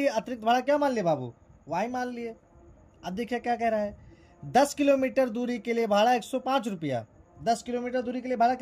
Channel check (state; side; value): identical; both; correlation 1.00